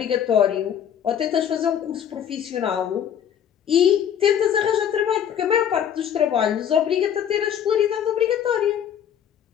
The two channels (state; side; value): quieter; right; 9.1 dB